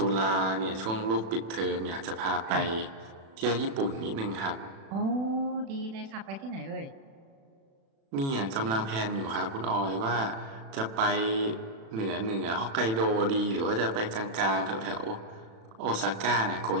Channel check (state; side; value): late; left; 36 ms